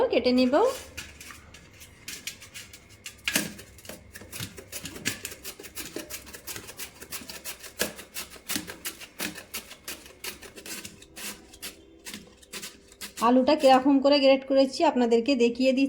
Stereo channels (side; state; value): both; identical; correlation 1.00